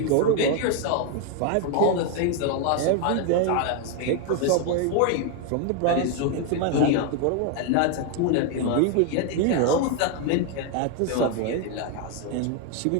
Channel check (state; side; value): different; both; correlation 0.01